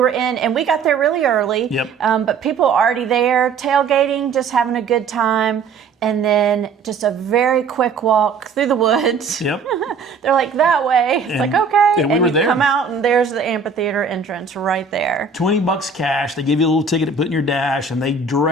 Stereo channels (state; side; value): quieter; left; 5.0 dB